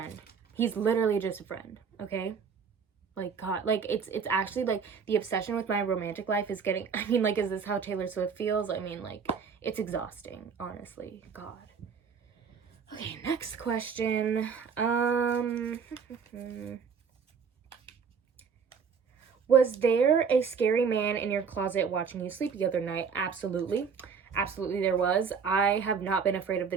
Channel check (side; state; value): left; quieter; 6.1 dB